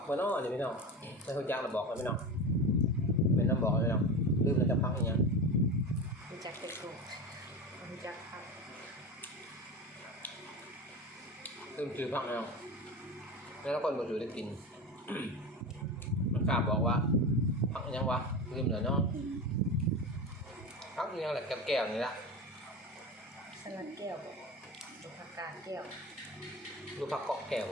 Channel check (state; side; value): normal; both; correlation 0.26